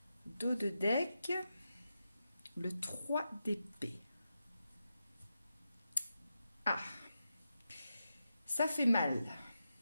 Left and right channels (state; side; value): inverted; both; correlation -0.88